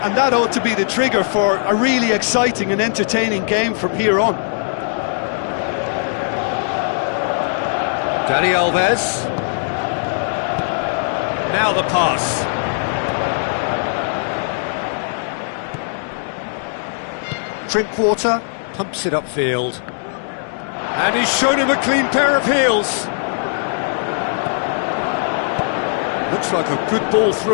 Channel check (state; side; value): silent; right; digital silence